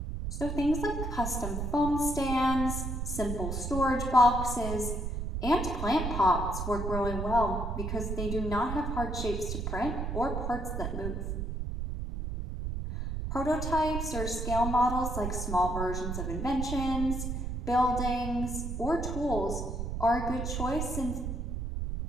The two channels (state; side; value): noise; right; rumble, 3 dB below the sound